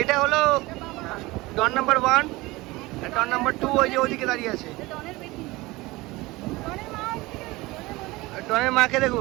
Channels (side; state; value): left; quieter; 21.1 dB